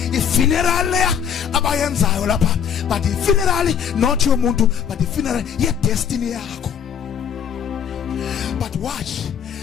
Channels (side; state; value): right; quieter; 8.2 dB